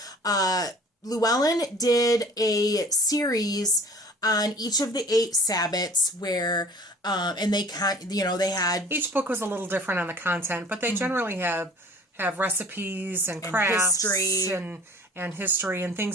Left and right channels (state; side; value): normal; both; correlation 0.48